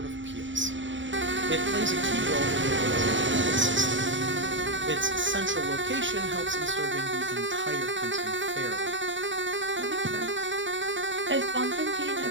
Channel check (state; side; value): late; left; 0.55 ms